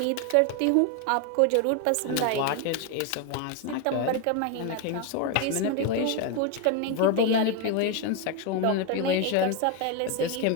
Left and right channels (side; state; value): both; different; correlation 0.01